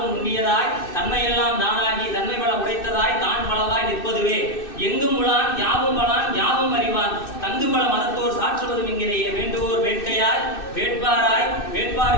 நுண்ணியதாய் தன்மையெல்லாம் தானாகி தன்மை பல உடைத்ததாய் தான் பலவாய் நிற்பதுவே. எங்கும் உளான் யாவும் பலான் யாவும் அறிவான் தங்கு பல மதத்தோர் சாற்றுவதும் இங்கிலேயே. வேண்டுவோர் வேட்கையாய் வேட்பாராய்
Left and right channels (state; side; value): late; right; 2.6 ms